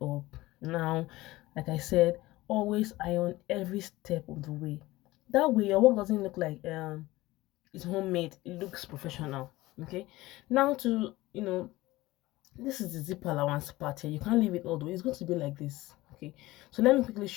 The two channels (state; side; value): quieter; right; 18.6 dB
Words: Now, like I said, always iron every step of the way. That way your work doesn't look like it's homemade, it looks professional. Okay, now to this is the zip allowance part here. You can't leave it all the way, it's going to be like this. Okay, so let me quickly